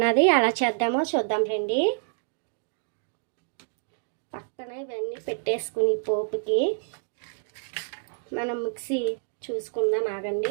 ఎలా చేద్దామో చూద్దాం రండి. పక్కన ఇవన్నీ పెట్టేసుకుని పోపుకి మనం మిక్సీ చూసుకుందాం.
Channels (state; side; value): silent; left; digital silence